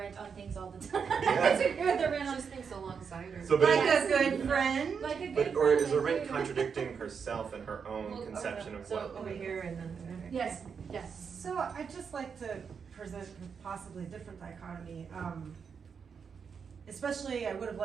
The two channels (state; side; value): quieter; left; 6.3 dB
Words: on things all the time. Yeah. I disagree with Arendt on Just thinks alongside her. So, like a good friend. Like a good But or is friend, Arendt contradicting herself and her own conception of what? over here and then Yes. Yes. So I'd just like to present possibly a different dichotomy. Especially, I would have